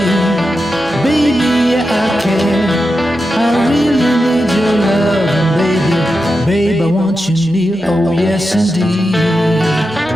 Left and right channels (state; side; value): normal; both; correlation 0.89